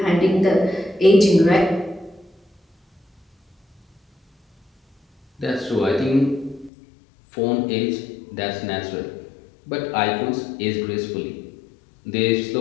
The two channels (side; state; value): right; drops out; at 6.7 s